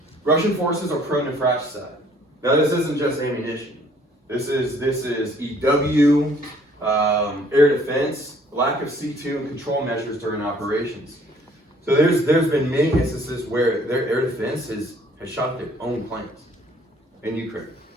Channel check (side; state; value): both; normal; correlation 0.60